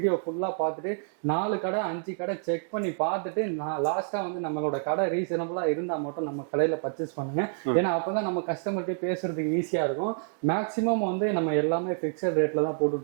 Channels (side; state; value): left; silent; digital silence